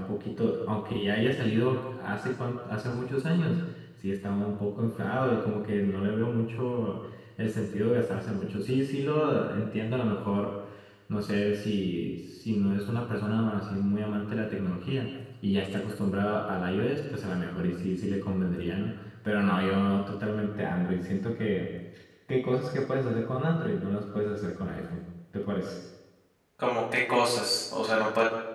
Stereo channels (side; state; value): both; identical; correlation 1.00